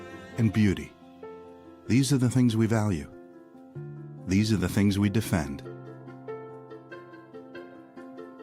and beauty. These are the things we value. These are the things we defend.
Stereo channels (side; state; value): both; identical; correlation 1.00